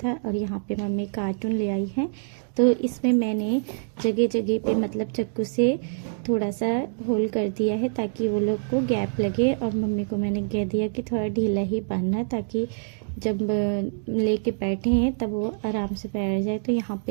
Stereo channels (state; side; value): silent; left; digital silence